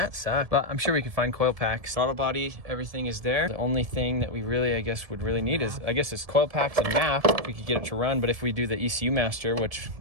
sucks. But I'm sure we can find coil packs. Throttle body, everything is there. The only thing that we really, I guess, would really need is, is coil packs and map if we could get it to run. But if we do the ECU master, which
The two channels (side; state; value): left; late; 1.7 ms